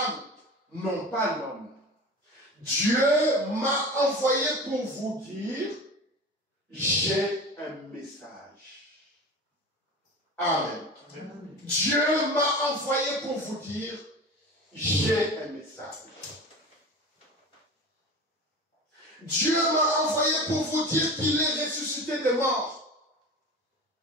non pas l'homme. Dieu m'a envoyé pour vous dire, j'ai un message. Amen. Dieu m'a envoyé pour vous dire, j'ai un message. Dieu m'a envoyé pour vous dire qu'il est ressuscité des morts,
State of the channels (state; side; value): normal; both; correlation 0.32